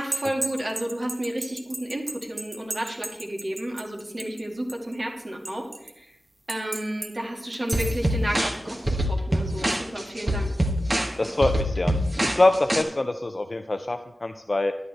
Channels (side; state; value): both; normal; correlation 0.94